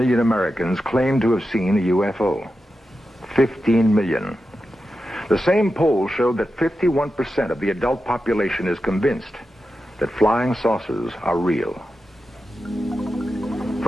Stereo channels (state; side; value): normal; both; correlation 0.90